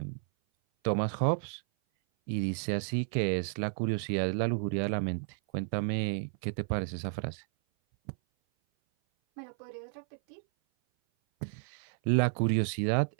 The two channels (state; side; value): silent; left; 56 dB below the other